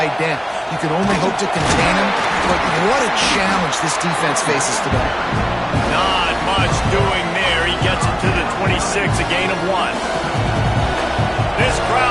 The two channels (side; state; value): both; identical; correlation 1.00